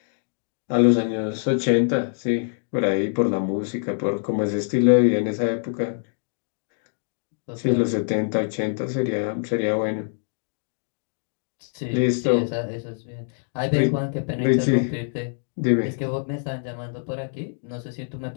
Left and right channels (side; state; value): right; silent; digital silence